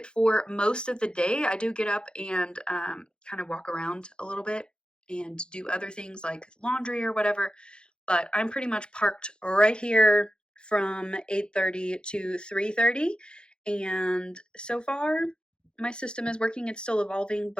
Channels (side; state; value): right; late; 0.050 ms